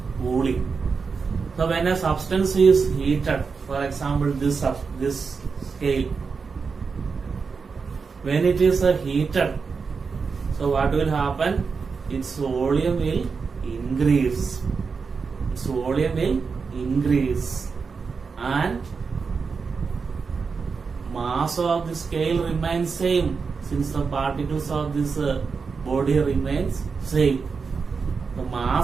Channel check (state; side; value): quieter; left; 5.2 dB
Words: cooling. So when a substance is heated, for example this scale, when it is heated, so what will happen? Its volume will increase. Its volume will increase and mass of the scale remains same since the particles of this body remains same. The